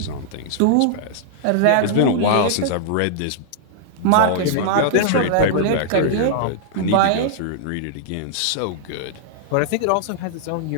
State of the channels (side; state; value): both; different; correlation -0.01